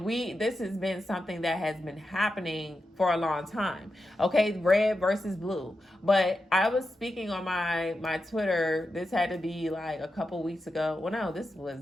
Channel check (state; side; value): normal; both; correlation 0.89